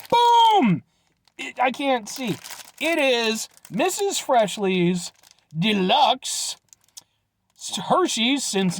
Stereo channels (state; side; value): identical; both; correlation 1.00